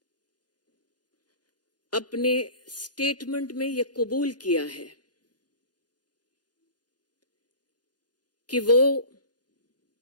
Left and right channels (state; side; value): late; right; 0.69 ms